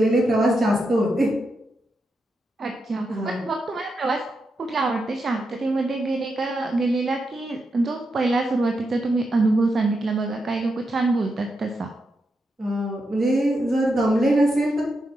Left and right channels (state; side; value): normal; both; correlation 0.85